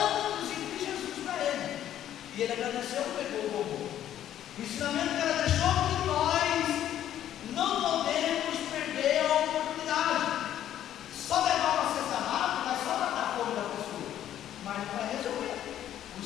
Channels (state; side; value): quieter; right; 11.3 dB